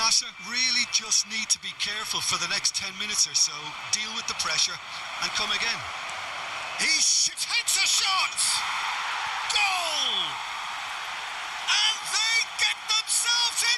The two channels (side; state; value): both; identical; correlation 1.00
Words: really just need to be careful for the next 10 minutes or so, deal with the pressure and come again. He takes a shot! Goal! And they get themselves